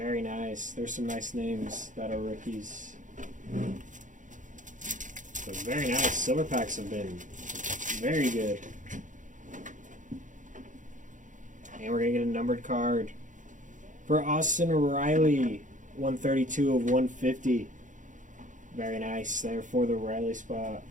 nice. There's some nice names that are rookies. So very nice. Silver packs have been very good. And we're going to get a numbered card for Austin Riley. 132 of 150. Very nice there for the Riley spot.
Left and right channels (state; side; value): late; left; 0.37 ms